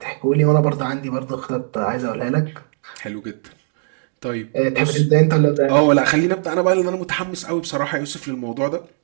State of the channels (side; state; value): left; silent; 66 dB below the other